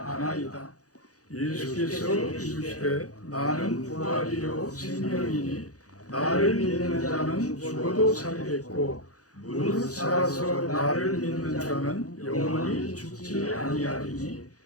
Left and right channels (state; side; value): late; right; 0.67 ms